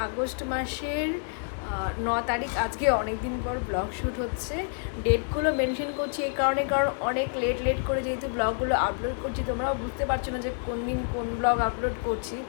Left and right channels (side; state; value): right; silent; 59 dB below the other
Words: আগস্ট মাসের 9 তারিখ, আজকে অনেক দিন পর ব্লগ শ্যুট হচ্ছে। ডেটগুলো মেনশন করছি এই কারণে, কারণ অনেক লেট করে যেহেতু ব্লগগুলো আপলোড করছি, তোমরাও বুঝতে পারছো না যে কোন দিন কোন ব্লগ আপলোড করছি।